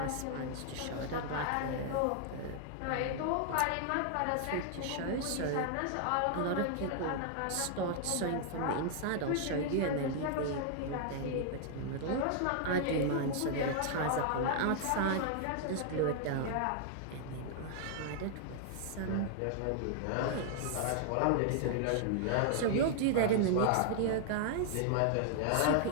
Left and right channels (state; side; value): different; both; correlation -0.01